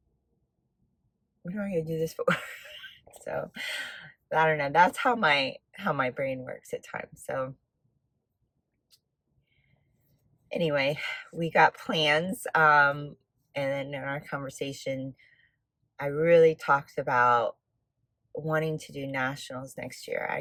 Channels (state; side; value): identical; both; correlation 1.00